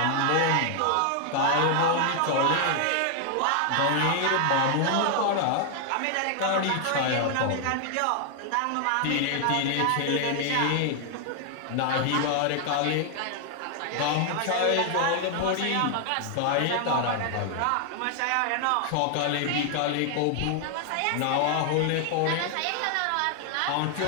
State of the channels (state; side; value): different; both; correlation 0.00